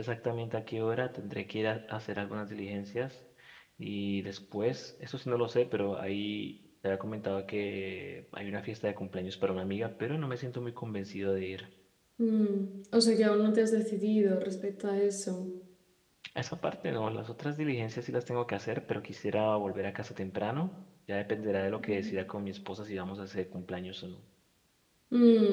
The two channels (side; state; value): both; identical; correlation 1.00